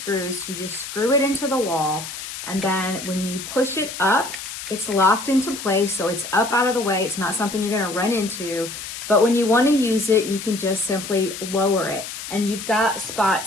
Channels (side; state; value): left; noise; hiss, 9 dB below the sound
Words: You just screw it into the wall, and then when you push it up, it's locked into place. So it's up out of the way. It's not something you're gonna run into. But when you want to use it, you can just simply lower it. And you've got